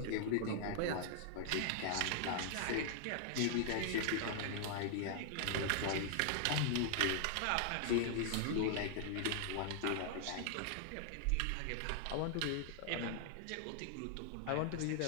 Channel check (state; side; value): different; both; correlation 0.00